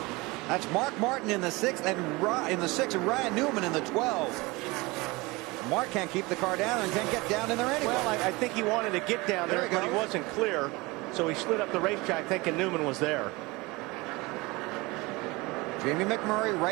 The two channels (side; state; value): left; quieter; 23.5 dB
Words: That's Mark Martin in the 6th, and in the 6th, and Ryan Newman in the 12th. Mark can't keep the car down and can't get down in there anyway. Well, I think he wanted to get down there, but he wasn't clear. So he slid up the racetrack thinking Newman was there. Jamie McMurray